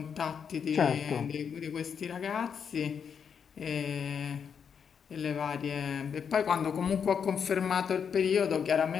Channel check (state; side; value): quieter; right; 7.0 dB